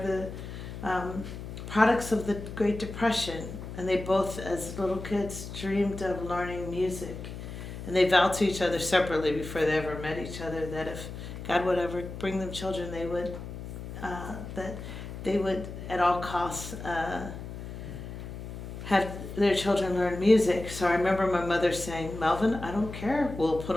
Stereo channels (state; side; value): noise; left; hum, 9 dB below the sound